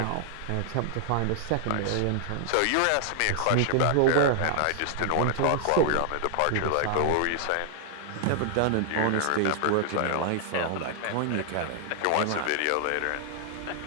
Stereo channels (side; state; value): both; different; correlation -0.01